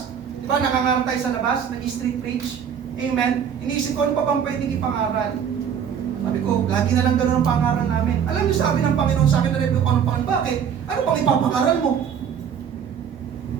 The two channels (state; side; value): quieter; left; 8.0 dB